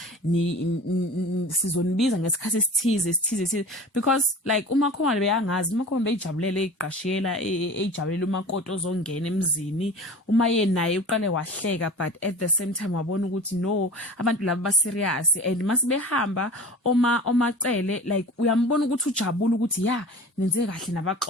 sizonibiza ngesikhathi esithize, because like umakhomalo beyangazi, umakhomalo beyijabulele iqashiyela ejabulela umakoti ozongena emzini, uma yena naye uqale wahleka, but at the same time wabona ukuthi no, abantu laba ba serious, and masibehamba omacele like uyambona ukuthi ujabula ukuthi nenze kahle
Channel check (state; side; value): normal; both; correlation 0.37